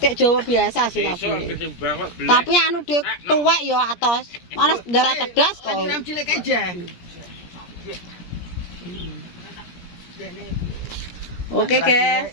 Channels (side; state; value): right; late; 17 ms